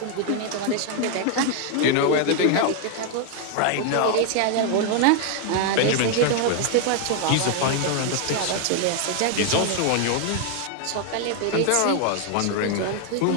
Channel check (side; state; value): both; different; correlation 0.00